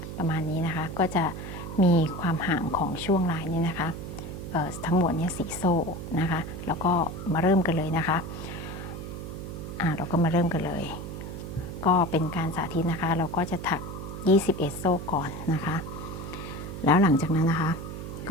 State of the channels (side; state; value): right; noise; hum, 8 dB below the sound